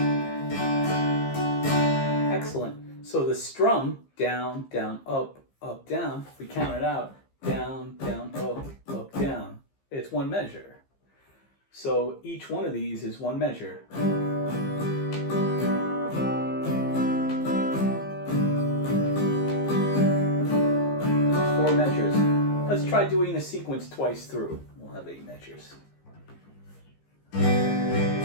Excellent. So the strum, down, down, up, up, down, if we count it out, down, down, up, down. It's one measure. So each one of these is one measure. Four measures. Let's try doing the sequence twice through. We'll have 8 measures.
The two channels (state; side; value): late; right; 15 ms